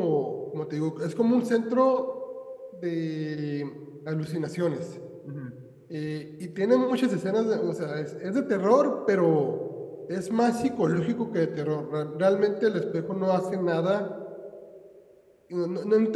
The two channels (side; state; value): both; identical; correlation 1.00